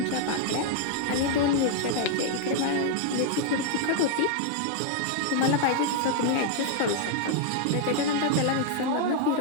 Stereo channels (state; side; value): different; both; correlation 0.00